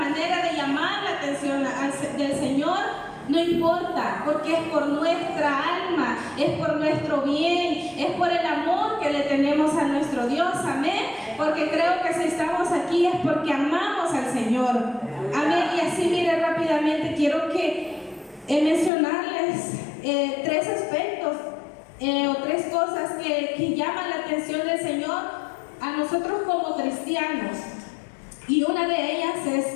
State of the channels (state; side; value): drops out; right; at 18.9 s